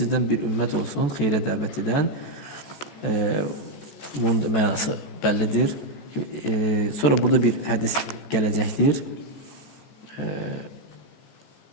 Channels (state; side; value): late; right; 14 ms